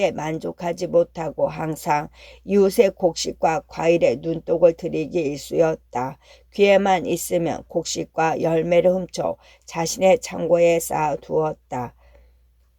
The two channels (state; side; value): identical; both; correlation 1.00